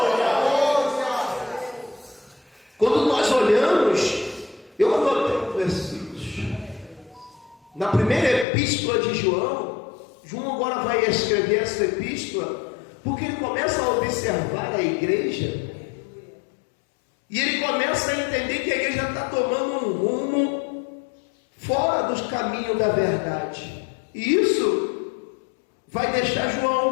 Quando nós olhamos, eu anotei versículos. Na primeira epístola de João agora vai escrever essa epístola, porque ele começa a observar a igreja, e ele começa a entender que a igreja está tomando um rumo fora dos caminhos da verdade, e isso vai deixar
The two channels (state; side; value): drops out; right; at 8.5 s